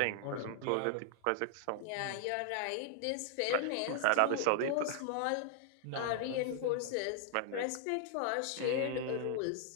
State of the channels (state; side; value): different; both; correlation 0.00